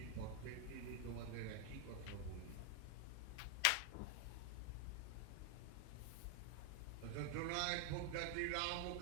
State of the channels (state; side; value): different; both; correlation 0.00